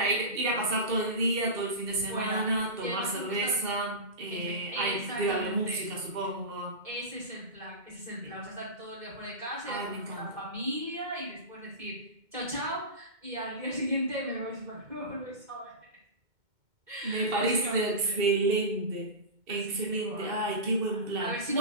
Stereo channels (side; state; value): left; late; 2.1 ms